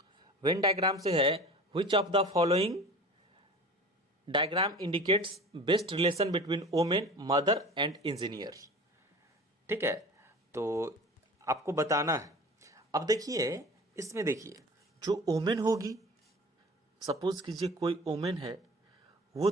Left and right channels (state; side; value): normal; both; correlation 0.39